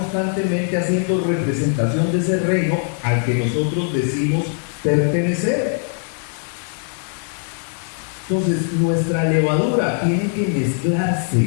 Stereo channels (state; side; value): silent; right; 57 dB below the other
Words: haciendo representación de ese reino al que nosotros decimos pertenecer. Entonces, nuestra levadura tiene que